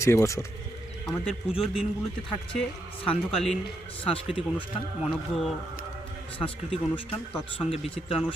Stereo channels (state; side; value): normal; both; correlation 0.80